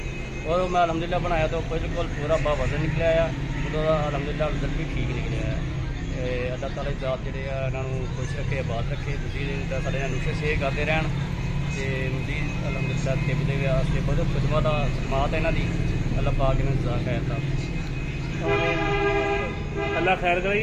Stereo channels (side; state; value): both; identical; correlation 1.00